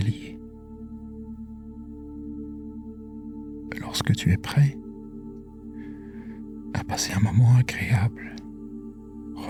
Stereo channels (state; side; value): identical; both; correlation 1.00